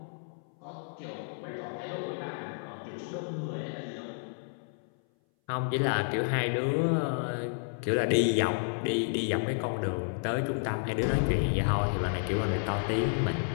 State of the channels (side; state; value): right; silent; 57 dB below the other